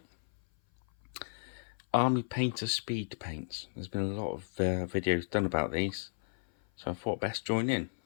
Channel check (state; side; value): silent; right; 55 dB below the other